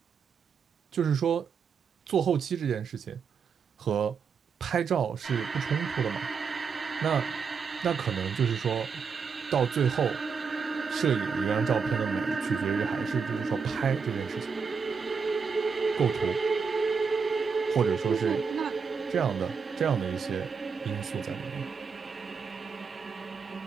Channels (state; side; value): quieter; left; 5.7 dB